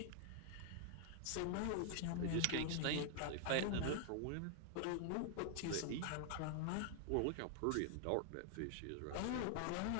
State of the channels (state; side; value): different; both; correlation 0.00